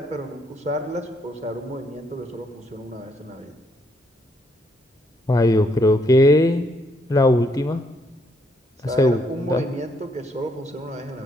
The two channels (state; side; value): normal; both; correlation 0.73